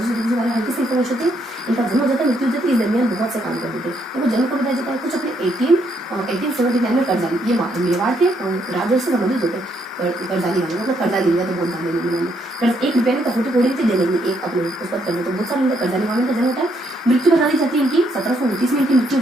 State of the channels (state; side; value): normal; both; correlation 0.73